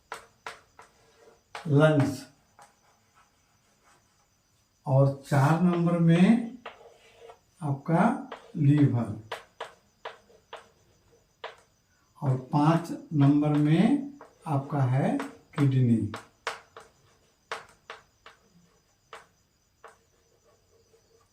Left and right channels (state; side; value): identical; both; correlation 1.00